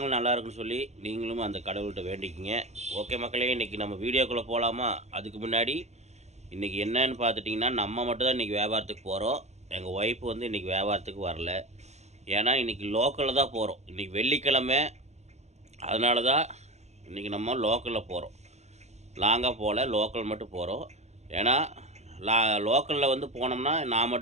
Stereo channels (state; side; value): late; left; 0.33 ms